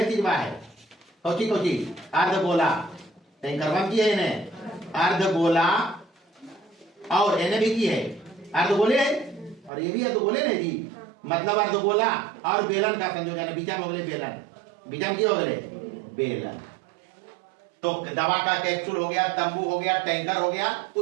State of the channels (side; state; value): left; drops out; at 9.7 s